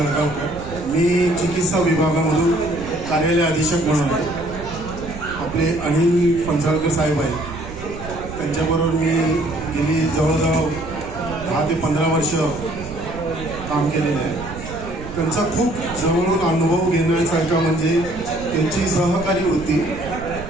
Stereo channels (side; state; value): right; noise; rumble, 12 dB below the sound